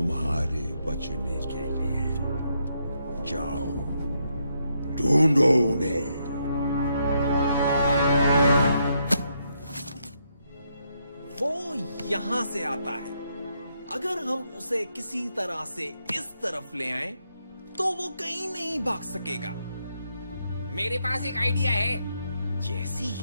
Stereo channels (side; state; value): both; inverted; correlation -0.78